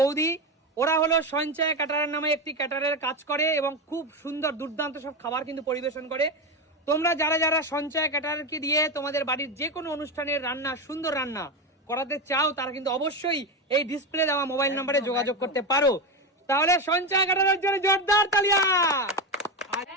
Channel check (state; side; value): normal; both; correlation 0.15